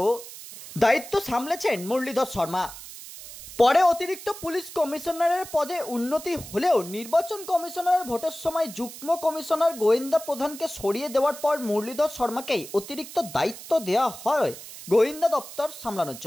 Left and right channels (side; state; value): right; noise; hiss, 14 dB below the sound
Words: দায়িত্ব সামলেছেন মুরলীধর শর্মা। পরে অতিরিক্ত পুলিশ কমিশনারের পদে উন্নতি হলেও নির্বাচন কমিশনারের ভোটের সময় যুগ্ম কমিশনার গোয়েন্দা প্রধানকে সরিয়ে দেওয়ার পর মুরলীধর শর্মাকেই অতিরিক্ত দায়িত্ব দেওয়া হয় গোয়েন্দা দপ্তর সামলানোর